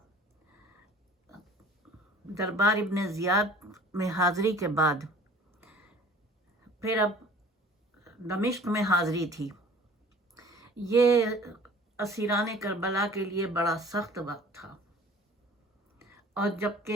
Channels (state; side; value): normal; both; correlation 0.48